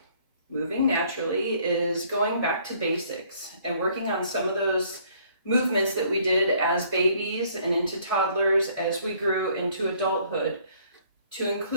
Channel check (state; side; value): inverted; both; correlation -0.61